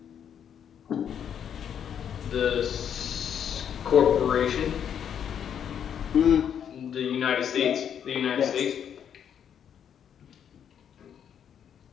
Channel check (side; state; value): right; quieter; 8.6 dB